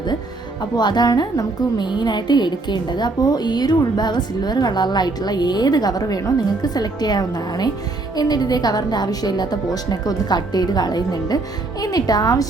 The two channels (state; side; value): quieter; left; 3.2 dB